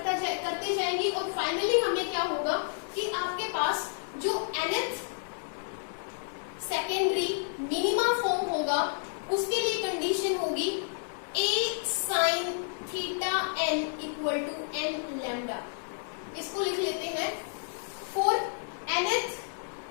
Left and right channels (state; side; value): silent; right; digital silence